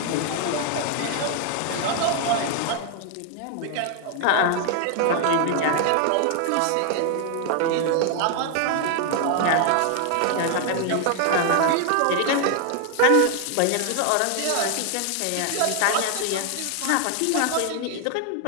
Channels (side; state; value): both; different; correlation 0.00